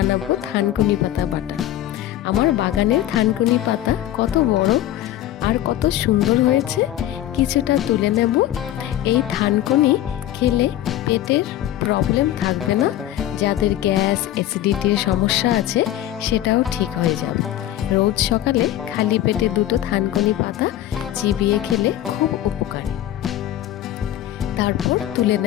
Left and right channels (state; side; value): quieter; right; 13.1 dB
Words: থানকুনি পাতা বাটা। আমার বাগানের থানকুনি পাতা কত বড় আর কত সুন্দর হয়েছে, কিছুটা তুলে নেব। এই থানকুনি খেলে পেটের প্রবলেম থাকবে না, যাদের গ্যাস অ্যাসিডিটির সমস্যা আছে সেটাও ঠিক হয়ে যাবে। রোজ সকালে খালি পেটে দুটো থানকুনি পাতা চিবিয়ে খেলে খুব উপকারী। তারপর তুলে